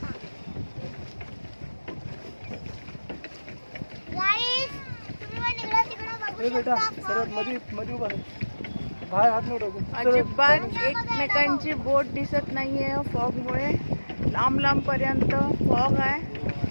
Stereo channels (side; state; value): both; inverted; correlation -1.00